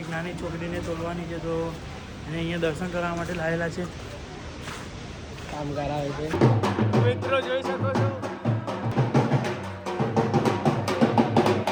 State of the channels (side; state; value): both; identical; correlation 1.00